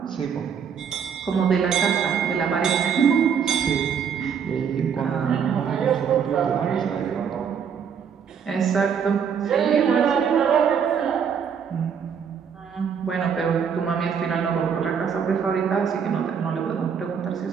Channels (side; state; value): left; quieter; 7.2 dB